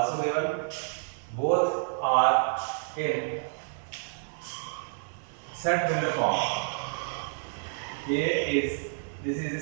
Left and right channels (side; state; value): left; silent; 55 dB below the other